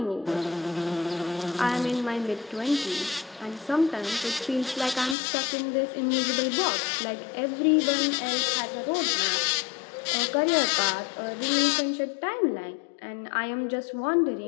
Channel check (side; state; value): right; drops out; at 5.2 s